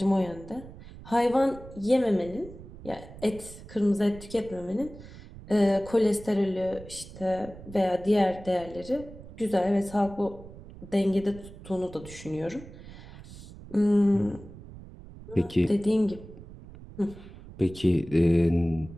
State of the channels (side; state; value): right; noise; rumble, 16 dB below the sound